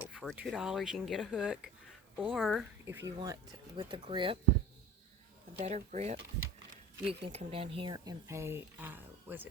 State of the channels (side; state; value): both; normal; correlation 0.39